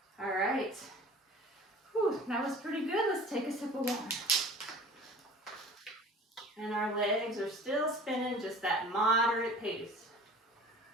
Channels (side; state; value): both; normal; correlation 0.43